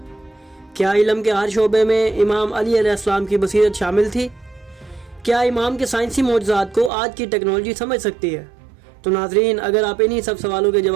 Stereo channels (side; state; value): left; drops out; at 6.9 s